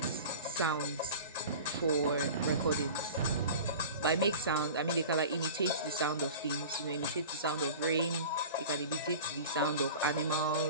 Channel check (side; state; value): both; inverted; correlation -0.36